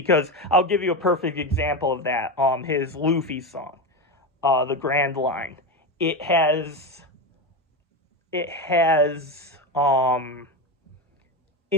I'll give you a perfect example of that. His Luffy song, the Grand Line. It has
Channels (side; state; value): both; normal; correlation 0.16